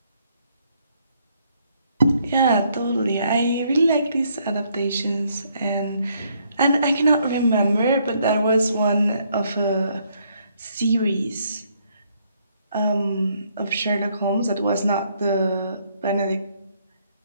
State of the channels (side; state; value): both; inverted; correlation -0.70